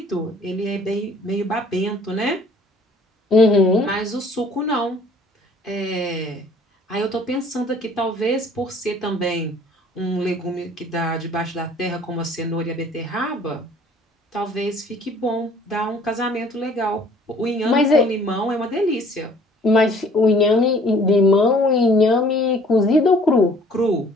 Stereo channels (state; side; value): normal; both; correlation 0.55